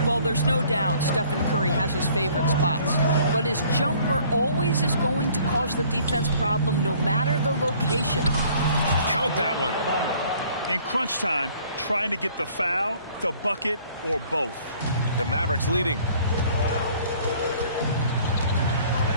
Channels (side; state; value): both; inverted; correlation -0.56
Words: Well, there's no doubt Stephen Curry has his favorite spots, but his jumper always is going to cause the defense problem no matter the location. Count that one. In crunch time, trying to get the foul, the bucket, or both. The Mavericks leading.